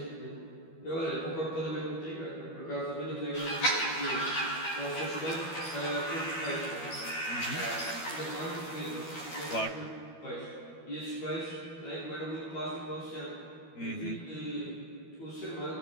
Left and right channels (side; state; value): right; late; 12 ms